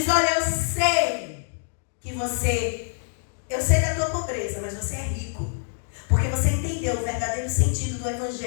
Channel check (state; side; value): silent; right; digital silence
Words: olha, eu sei da tua pobreza, mas você é rico. Porque você entendeu o verdadeiro sentido do